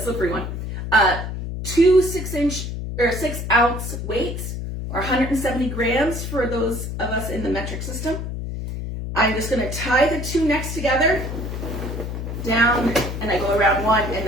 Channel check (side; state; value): left; noise; hum, 5 dB below the sound